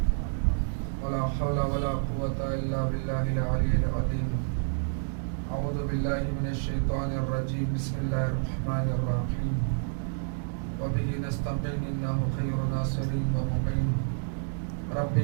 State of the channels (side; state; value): left; silent; digital silence